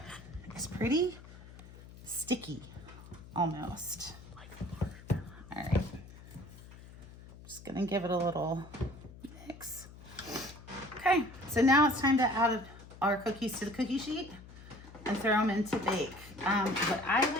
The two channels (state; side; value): noise; left; hum, 18 dB below the sound